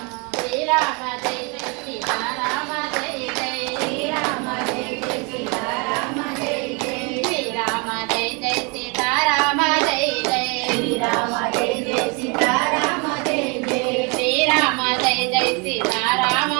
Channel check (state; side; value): quieter; left; 31.5 dB